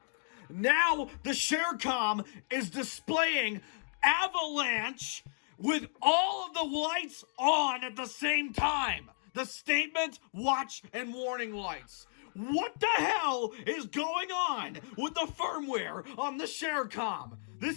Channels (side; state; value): right; silent; digital silence